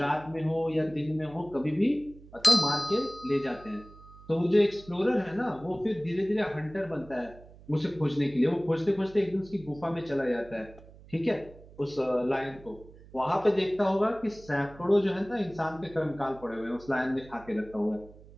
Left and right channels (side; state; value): right; noise; hum, 21 dB below the sound